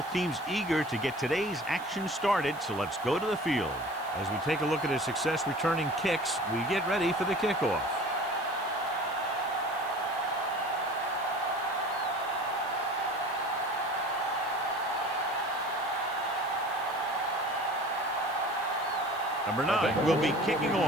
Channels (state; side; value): noise; right; hiss, 21 dB below the sound